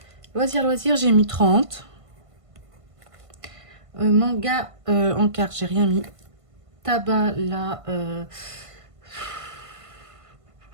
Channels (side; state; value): left; late; 1.5 ms